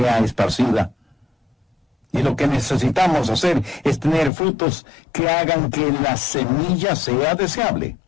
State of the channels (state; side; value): drops out; right; at 4.3 s